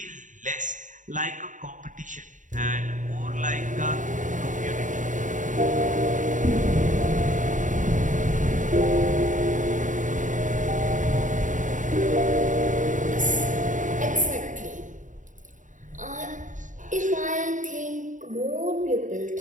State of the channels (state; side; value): late; left; 0.37 ms